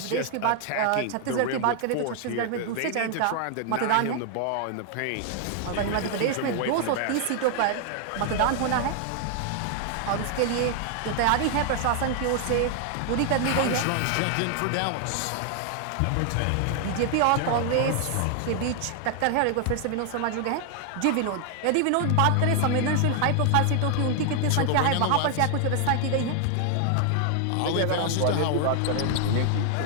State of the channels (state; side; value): different; both; correlation 0.00